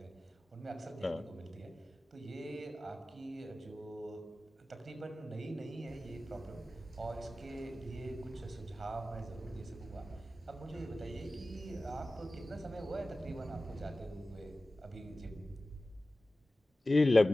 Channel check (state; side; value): normal; both; correlation 0.96